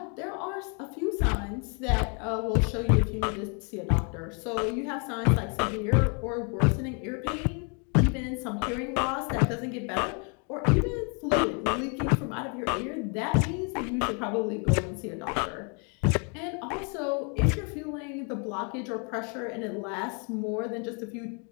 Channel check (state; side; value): quieter; right; 36.9 dB